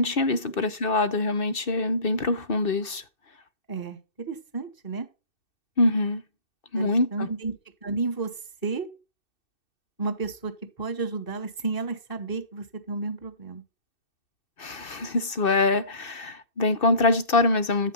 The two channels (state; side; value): late; right; 2.6 ms